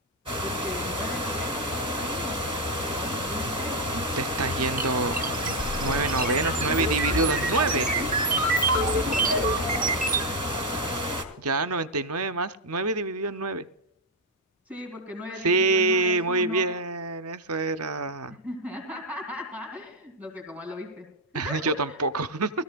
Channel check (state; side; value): normal; both; correlation 0.01